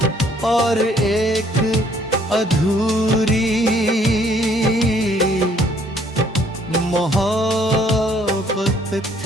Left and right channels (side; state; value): both; normal; correlation 0.63